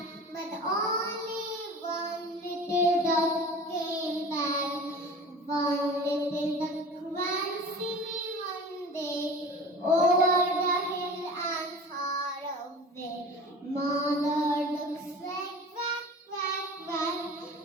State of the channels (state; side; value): normal; both; correlation 0.38